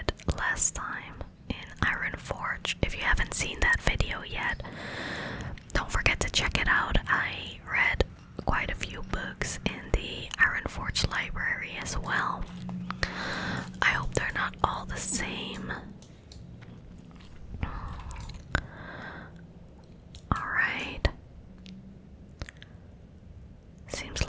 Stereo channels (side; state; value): both; identical; correlation 1.00